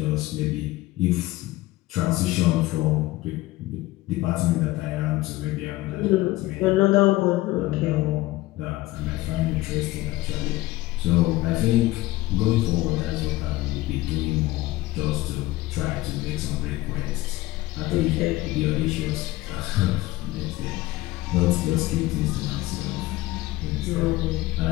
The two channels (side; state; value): right; quieter; 18.0 dB